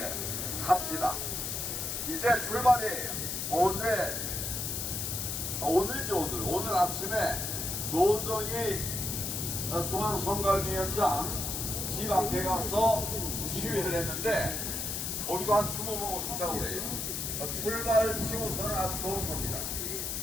합시다. 이제 출발이에요. 오늘이죠. 오늘 아침에 노정희 중앙선관위원장 집 앞에 가서 시위를 했는데 거기도 한 20분 오신다고 그래요. 출발 치고서는 아주 좋은 겁니다.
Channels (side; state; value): left; noise; hiss, 3 dB below the sound